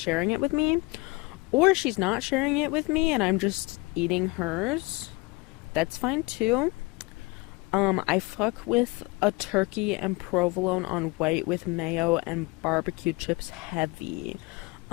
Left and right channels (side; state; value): right; quieter; 24.8 dB